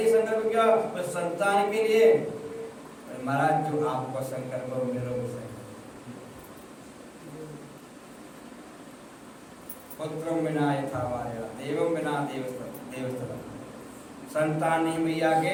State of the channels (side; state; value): both; identical; correlation 1.00